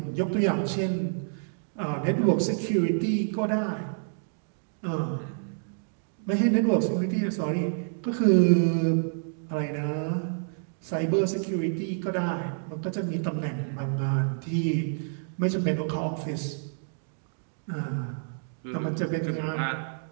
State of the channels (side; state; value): left; silent; digital silence